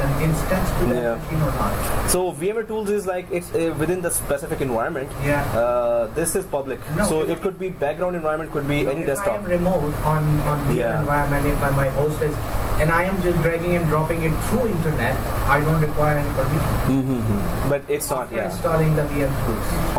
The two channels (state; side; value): identical; both; correlation 1.00